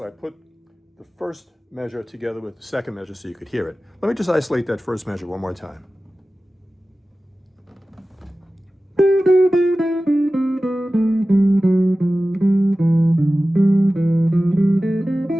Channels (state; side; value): normal; both; correlation 0.96